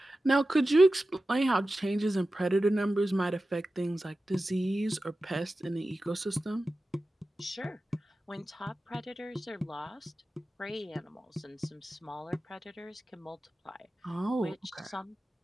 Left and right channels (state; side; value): normal; both; correlation 0.94